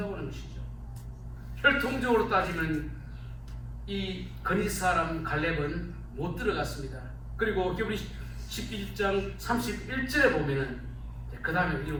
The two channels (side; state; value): both; identical; correlation 1.00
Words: 하는 것이죠. 혈통적으로 따지면 이 그리스 사람 갈렙은 못 들어갔습니다. 그리고 히브리 11장 31절에 보면은 그 다음에